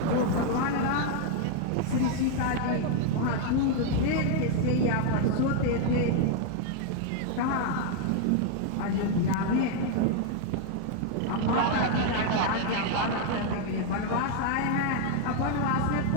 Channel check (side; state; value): both; different; correlation 0.00